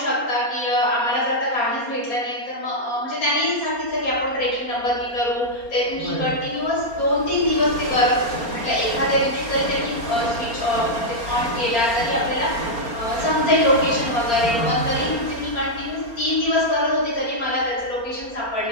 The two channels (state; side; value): late; right; 4.3 ms